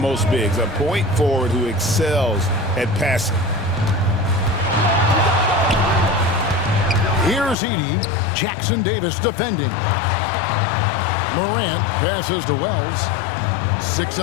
most bigs, a point forward who excels at passing. Here's Edey. Jackson Davis defending. Morant passes to Wells. 6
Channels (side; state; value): right; drops out; at 7.6 s